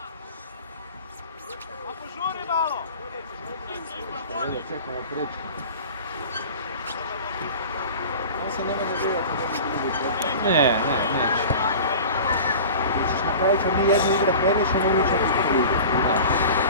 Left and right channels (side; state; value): both; inverted; correlation -0.38